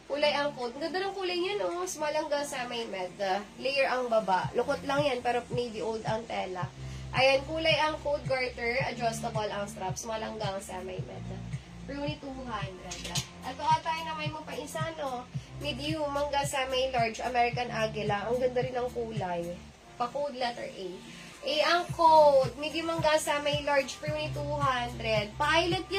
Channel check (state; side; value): identical; both; correlation 1.00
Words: Kulay ang code. Ganda ng kulay niya, no? Small hanggang semi-med. Layer ang baba. Lukot lang yan, pero navy old ang tela. Ayan, kulay ang code, garter. Adjustable ang strap. Small hanggang semi-med. For only 200. Ito tayo na may mo pa isa, no? Medium hanggang sa may large American Aguila. Ang ganda rin ng kulay. Pa-code letter A. A ang code. Medium hanggang sa may large for only 200. Pilot